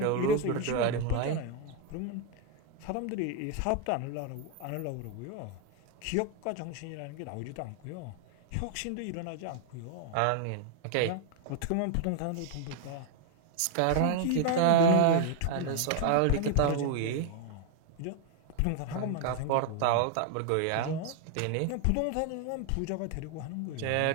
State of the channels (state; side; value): different; both; correlation 0.01